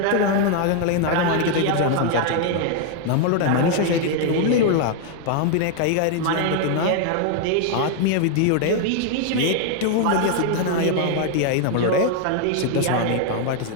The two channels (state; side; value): different; both; correlation 0.00